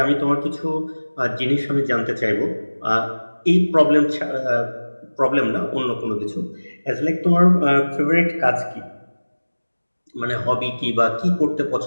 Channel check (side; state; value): both; inverted; correlation -1.00